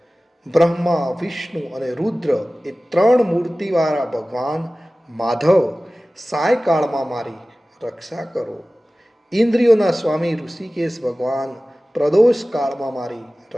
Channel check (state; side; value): normal; both; correlation 0.97